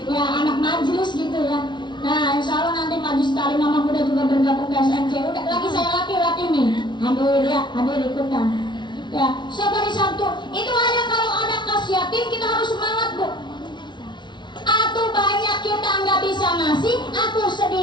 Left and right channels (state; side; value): late; right; 0.22 ms